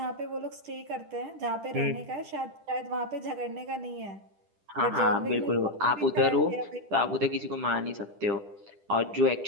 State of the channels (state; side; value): late; left; 10 ms